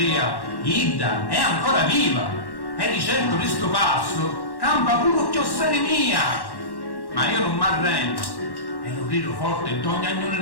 Idda è ancora viva, e di certo di sto passo campa pure chiossere mia. Ma io non m'arrendo, e lo grido forte in ogni agnone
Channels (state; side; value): late; right; 1.1 ms